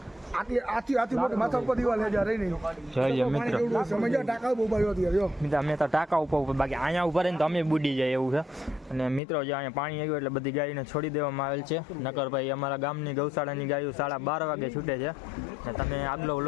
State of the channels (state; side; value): drops out; right; at 9.2 s